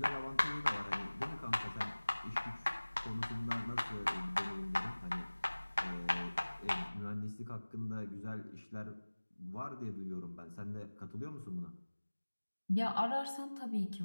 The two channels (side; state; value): both; inverted; correlation -1.00